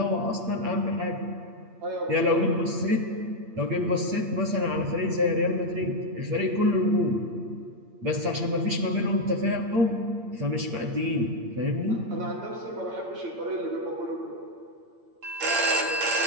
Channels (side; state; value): left; late; 8.7 ms